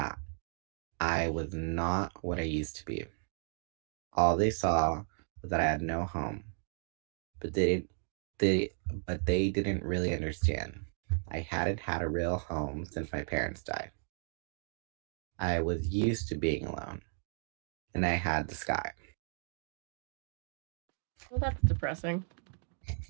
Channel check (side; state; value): left; silent; 55 dB below the other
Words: I was not what I used to be. All they saw was that I had no home, but they didn't really understand. I hadn't had a real home since my parents died. I was used to being alone, and I had the sky. Well, that's depressing.